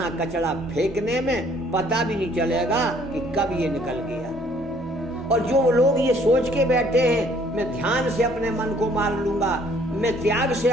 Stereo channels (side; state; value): both; normal; correlation 0.60